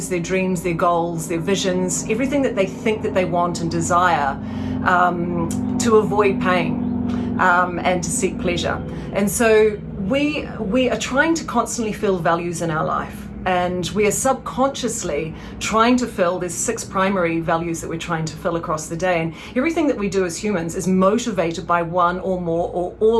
their dreams, their goals, their visions, everything that they think that they want and desire, to avoid pain and to seek pleasure. And so we are trying to constantly fill values in our life. And we are subconsciously trying to fill, there's 6 primary values that we're trying to fill across the day. And everything that we do as humans is motivated by one or more or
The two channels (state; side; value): identical; both; correlation 1.00